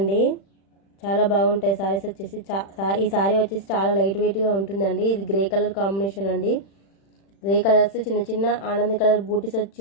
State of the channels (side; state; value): right; late; 36 ms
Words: చాలా బాగుంటాయి సారీస్ వచ్చేసి. ఈ సారీ వచ్చేసి చాలా లైట్ వెయిట్గా ఉంటుందండి. ఇది గ్రే కలర్ కాంబినేషన్ అండి. గ్రే కలర్స్ చిన్న చిన్న ఆనంద కలర్ బూటీస్ వచ్చి